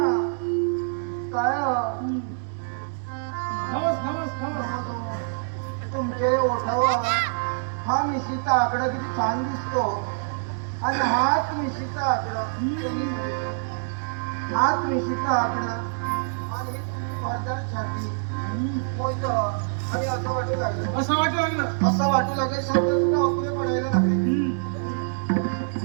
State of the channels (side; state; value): left; silent; digital silence